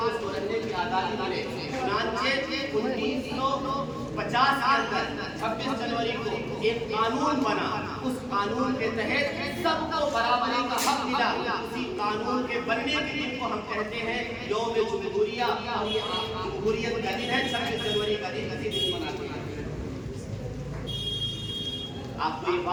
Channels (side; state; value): both; identical; correlation 1.00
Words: اس کو رہنے کی آزادی ملے۔ چنانچہ 1950 کے اندر 26 جنوری کو ایک قانون بنا، اس قانون کے تحت سب کو برابری کا حق ملا۔ اسی قانون کے بننے کے دن کو ہم کہتے ہیں یوم جمہوریہ، اور یہ جمہوریت کا دن ہے، 26 جنوری کا دن مناتے ہیں۔ آپ کو یہ